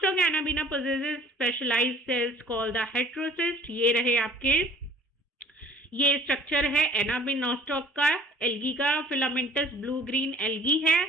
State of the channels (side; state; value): both; normal; correlation 0.51